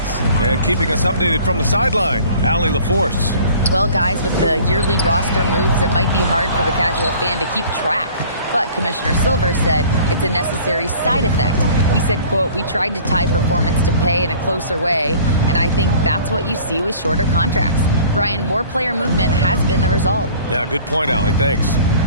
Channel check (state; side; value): inverted; both; correlation -0.49